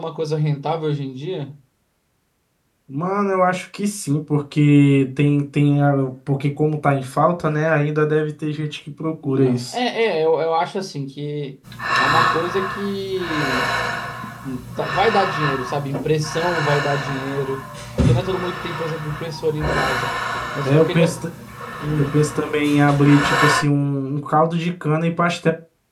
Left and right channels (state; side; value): identical; both; correlation 1.00